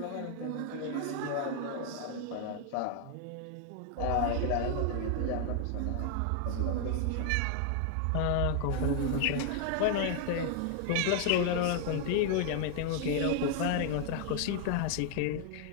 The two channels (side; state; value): both; different; correlation 0.00